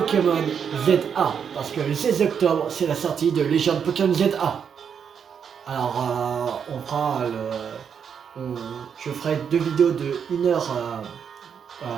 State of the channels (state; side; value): quieter; left; 7.3 dB